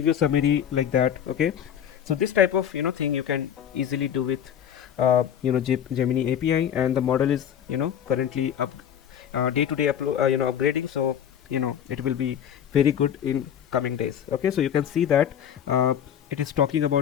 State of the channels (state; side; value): quieter; right; 9.2 dB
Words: you summary like that. Okay, so this type of thing you can easily do with Gemini API, and the model is currently up day-to-day upgrading, so it will be very good in coming days. Okay, so you can see that it is talking